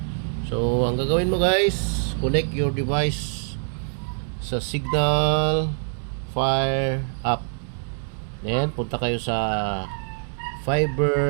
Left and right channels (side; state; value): left; silent; digital silence